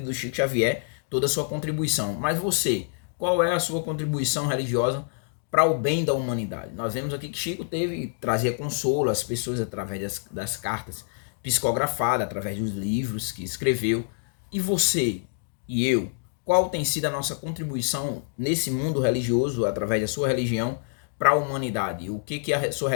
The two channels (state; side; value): silent; right; digital silence